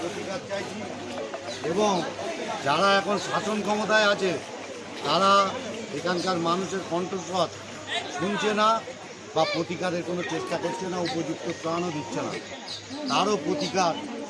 চাইছি এবং যারা এখন শাসন ক্ষমতায় আছে তারা এখানকার মানুষের কণ্ঠস্বর শুনছে না বা প্রতিকারের কোনো চেষ্টা করছে না, উপযুক্ত ত্রাণও দিচ্ছে না। তারও প্রতিকার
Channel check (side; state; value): both; identical; correlation 1.00